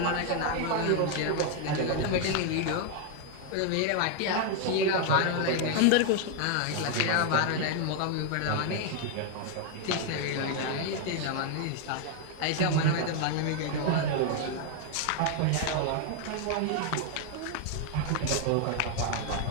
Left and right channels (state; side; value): different; both; correlation 0.01